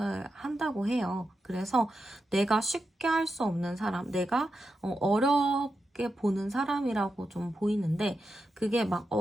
한다고 해요. 그래서 내가 쉽게 할 수 없는 사람, 내가 어렵게 보는 사람이라고 좀 보이는데, 그게 막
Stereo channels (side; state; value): both; normal; correlation 0.88